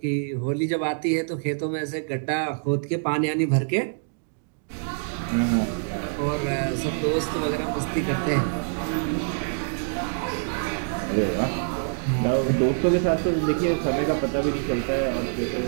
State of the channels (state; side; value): silent; left; digital silence